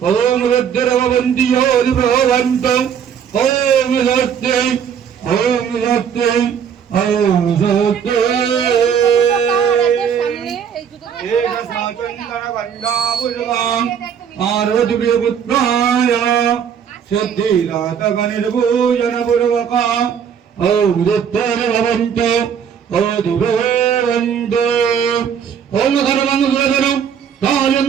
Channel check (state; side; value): quieter; left; 7.9 dB